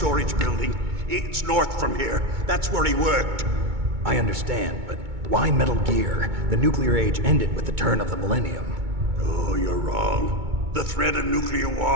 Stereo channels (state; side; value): late; left; 2.2 ms